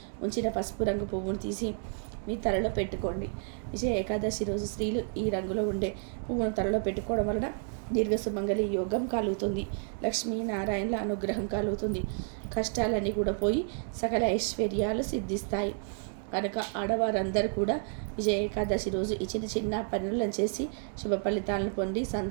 ఉంచిన పసుపు రంగు పువ్వును తీసి మీ తలలో పెట్టుకోండి. విజయ ఏకాదశి రోజు స్త్రీలు ఈ రంగులో ఉండే పువ్వును తలలో పెట్టుకోవడం వలన దీర్ఘ సుమంగళి యోగం కలుగుతుంది, లక్ష్మీనారాయణల అనుగ్రహం కలుగుతుంది, కష్టాలన్నీ కూడా పోయి సకల ఐశ్వర్యాలు సిద్ధిస్తాయి. కనుక ఆడవారందరూ కూడా విజయ ఏకాదశి రోజు ఈ చిన్న చిన్న పనులను చేసి శుభ ఫలితాలను పొంది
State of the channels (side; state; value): left; silent; 57 dB below the other